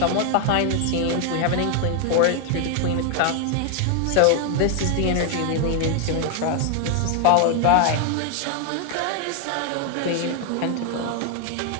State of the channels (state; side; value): different; both; correlation 0.00